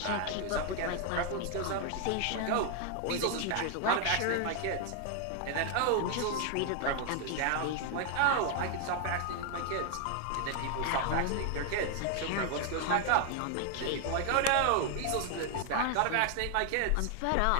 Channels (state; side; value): different; both; correlation 0.00